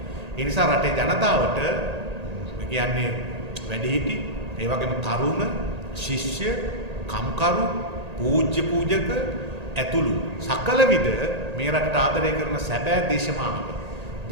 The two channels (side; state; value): left; late; 1.8 ms